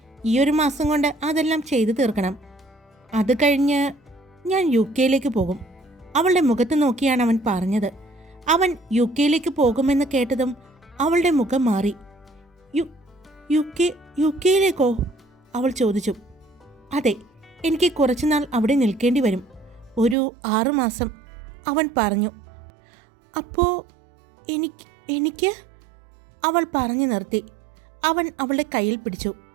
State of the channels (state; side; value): drops out; left; at 20.2 s